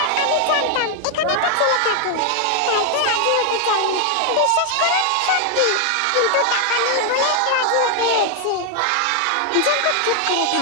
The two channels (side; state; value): both; different; correlation 0.00